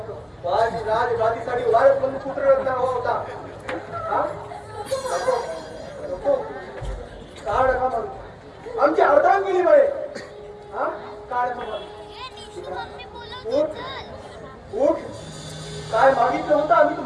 राजगादीसाठी वारस म्हणून पुत्र हवा होता. हा? नको. का नका म्हणू. आमची अर्धांगिनी बळे. हा? का नका म्हणू. उठ. काय मागितलं होतं आम्ही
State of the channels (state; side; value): identical; both; correlation 1.00